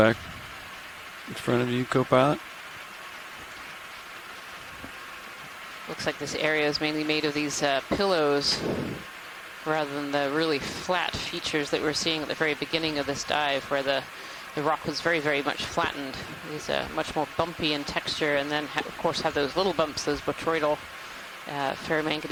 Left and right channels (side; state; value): both; identical; correlation 1.00